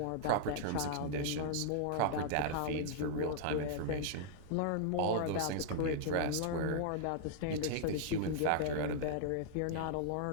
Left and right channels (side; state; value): both; different; correlation -0.01